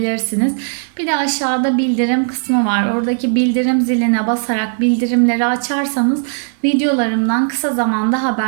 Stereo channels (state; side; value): silent; left; 63 dB below the other